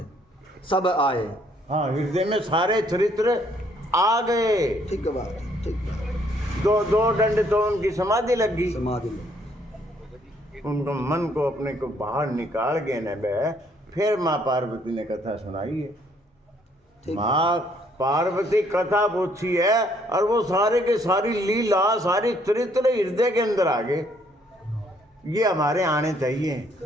सब आए, हाँ हृदय में सारे चरित्र आ गए। ठीक है बात, ठीक है। दो दंड तो उनकी समाधि लग गई, समाधि में उनको मन को अपने को बाहर निकाल के न बे, फिर माँ पार्वती ने कथा सुनाई है। माँ पार्वती कथा पूछी है और वो सारे के सारी लीला सारी चरित्र हृदय के अंदर आ गए। ये हमारे आने चाहिए,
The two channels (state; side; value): normal; both; correlation 0.66